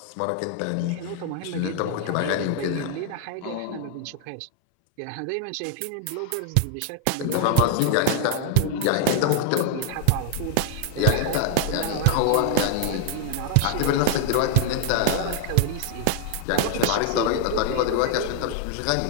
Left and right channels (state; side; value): different; both; correlation 0.00